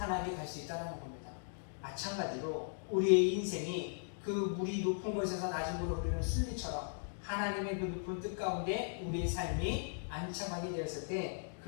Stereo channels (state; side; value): silent; right; digital silence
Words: 갈 수 있다는 겁니다. 마찬가지로 우리의 인생이 그 물이 높은 곳에서 낮은 곳으로 흐르는 순리처럼 하나님의 그 높은 뜻 가운데 우리의 삶이 안착하게 되었을 때